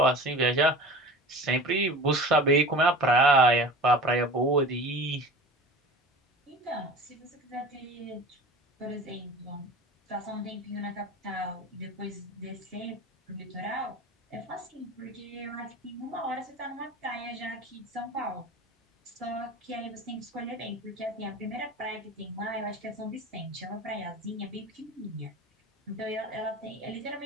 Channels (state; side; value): normal; both; correlation 0.37